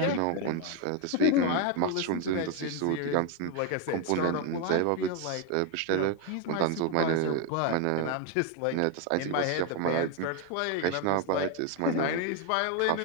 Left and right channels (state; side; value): different; both; correlation 0.01